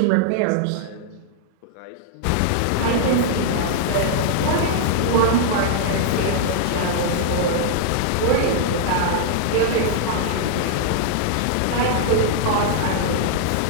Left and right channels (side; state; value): both; different; correlation -0.01